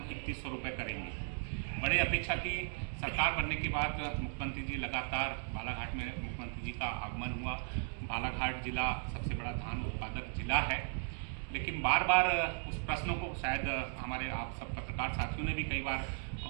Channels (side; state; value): left; silent; 53 dB below the other